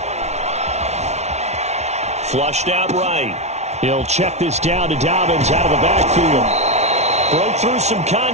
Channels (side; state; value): left; late; 0.32 ms